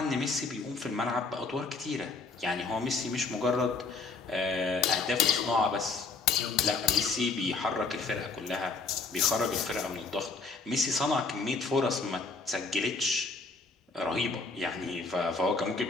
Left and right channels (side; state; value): right; quieter; 4.1 dB